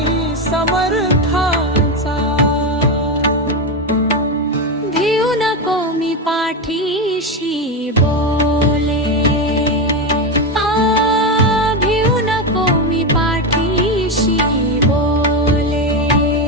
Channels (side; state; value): both; normal; correlation 0.12